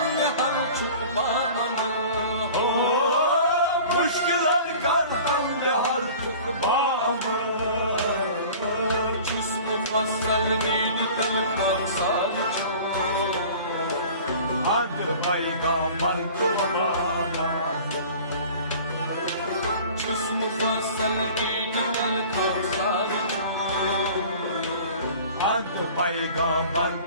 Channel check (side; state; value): both; inverted; correlation -0.43